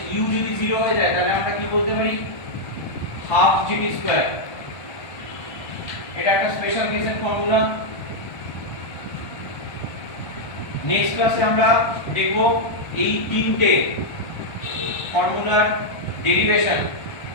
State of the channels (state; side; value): late; right; 1.3 ms